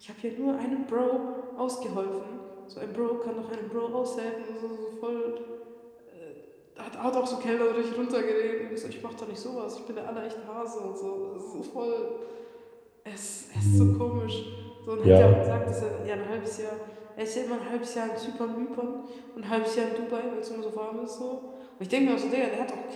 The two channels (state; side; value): identical; both; correlation 1.00